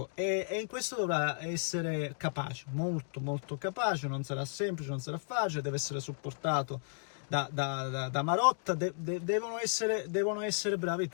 e in questo dovrà essere capace, molto molto capace. Non sarà semplice, non sarà facile, deve essere supportato da Marotta, devono essere bravi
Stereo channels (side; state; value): right; silent; digital silence